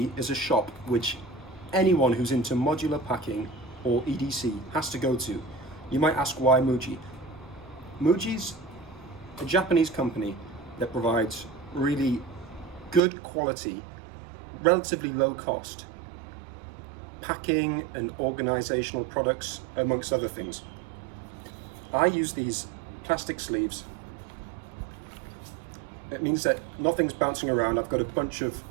is a shop which anyone who's into modular packing or EDC has to go to. You might ask why MUJI? MUJI's a Japanese company that provides really good quality, relatively low cost packing and organizational products, amongst other things. I use these plastic sleeves. It means that nothing's bouncing around. I've got a bunch of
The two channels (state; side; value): drops out; left; at 13.0 s